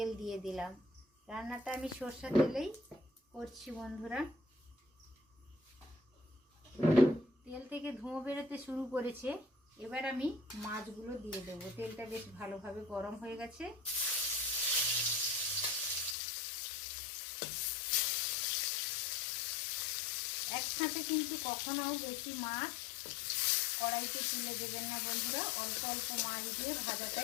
দিয়ে দিলাম। রান্নাটা আমি সরষের তেলেই করছি বন্ধুরা। তেল থেকে ধোঁয়া বেরোতে শুরু করেছে। এবার আমি মাছগুলো দিয়ে দেবো। তেলটা বেশ ভালোভাবে গরম হয়ে গেছে। একসাথে কিন্তু কখনো বেশি মাছ কড়াইতে তুলে দেবেন না বন্ধুরা। অল্প অল্প মাছ দিয়ে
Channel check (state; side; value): drops out; right; at 16.2 s